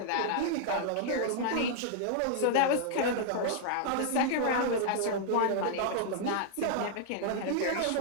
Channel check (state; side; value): different; both; correlation -0.01